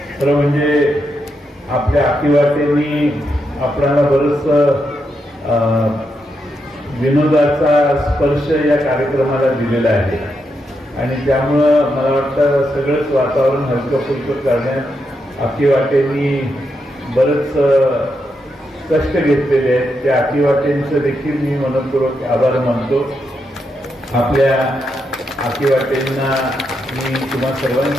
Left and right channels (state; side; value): normal; both; correlation 0.83